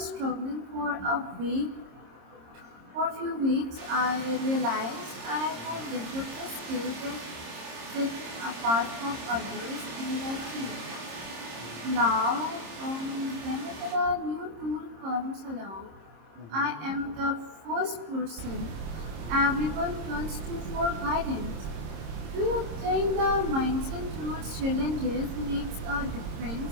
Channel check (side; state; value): left; late; 26 ms